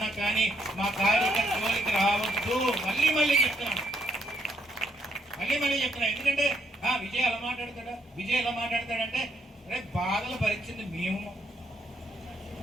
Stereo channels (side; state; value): both; normal; correlation 0.73